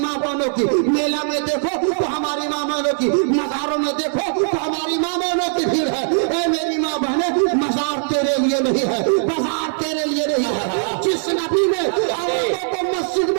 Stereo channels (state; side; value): silent; left; 59 dB below the other